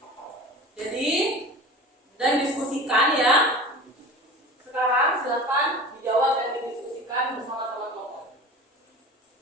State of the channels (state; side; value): normal; both; correlation 0.36